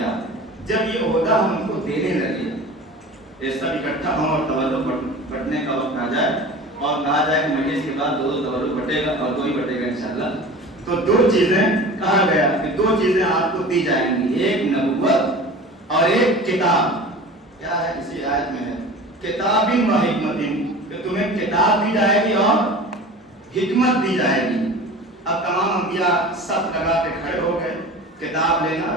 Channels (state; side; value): normal; both; correlation 0.37